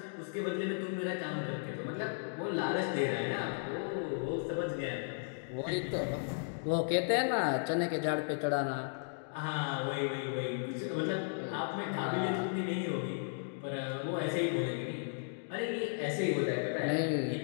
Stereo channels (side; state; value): right; silent; digital silence